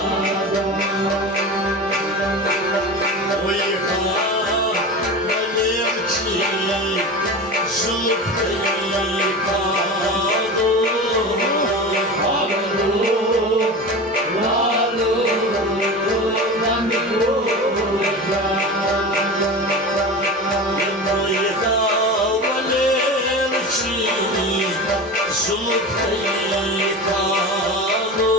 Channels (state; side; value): normal; both; correlation 0.29